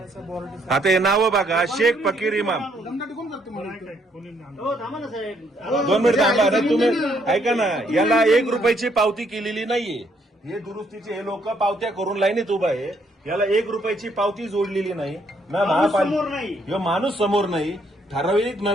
आता हे नाव बघा, शेख फकीर इमाम। 2 मिनिट थांबा ना तुम्ही, ऐका ना, याला 1 रुपयाची पावती केलेली नाहीये। हे दुरुस्तीचे हे लोक पावत्या करून लाईनीत उभा आहे। याला 1 रुपयाची पावती जोडलेली नाही ना, महापालिका माणूस समोर नाही, ठराविक न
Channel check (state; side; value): normal; both; correlation 0.70